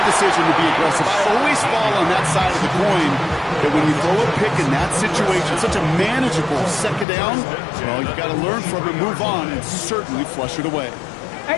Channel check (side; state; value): right; drops out; at 7.1 s